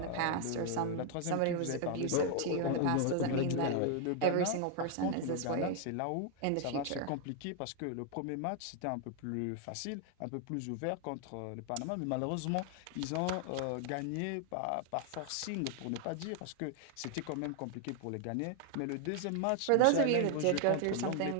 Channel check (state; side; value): different; both; correlation 0.00